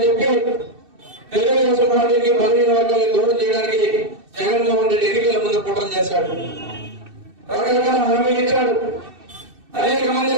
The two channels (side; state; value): left; late; 2.6 ms